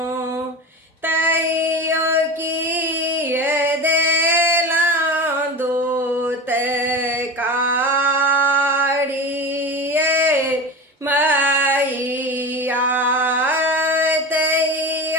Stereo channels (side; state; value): both; normal; correlation 0.28